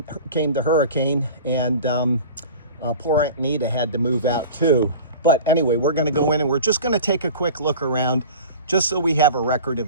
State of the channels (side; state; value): both; inverted; correlation -0.38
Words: came the hurricane, and poor Aunt Nita had to move out too. But anyway, we're going to go in and we're just going to take a quick look around just so we have a record